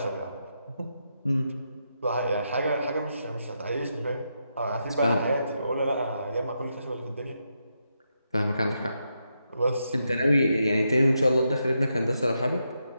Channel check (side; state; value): both; inverted; correlation -0.83